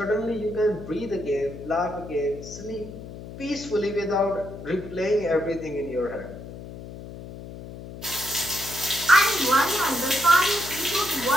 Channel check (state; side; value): noise; left; hum, 12 dB below the sound